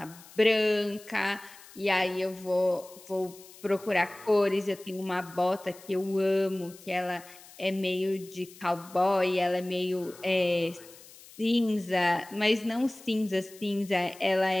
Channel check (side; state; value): left; noise; hiss, 21 dB below the sound